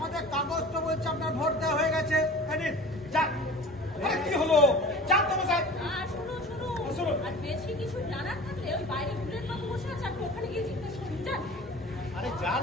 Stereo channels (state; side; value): normal; both; correlation 0.39